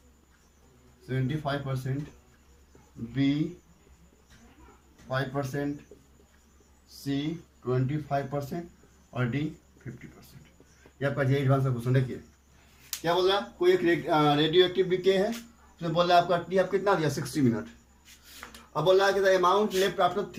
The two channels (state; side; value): identical; both; correlation 1.00